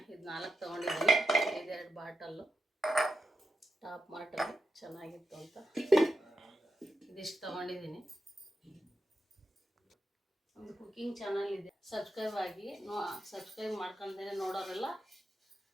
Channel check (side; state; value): both; normal; correlation 0.87